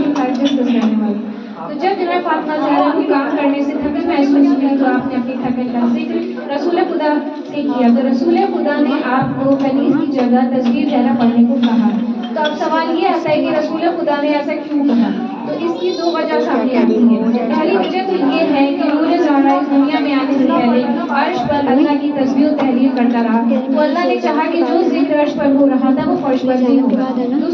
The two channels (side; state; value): both; identical; correlation 1.00